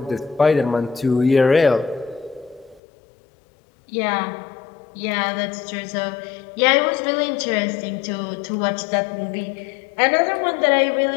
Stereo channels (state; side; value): drops out; right; at 2.8 s